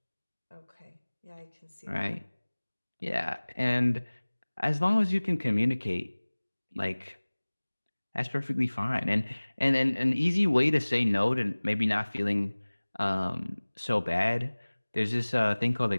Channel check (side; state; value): both; inverted; correlation -1.00